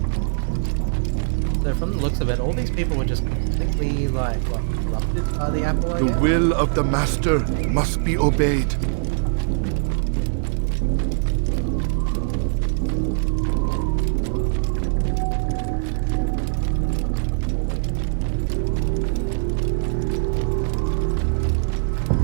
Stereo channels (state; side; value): silent; left; 64 dB below the other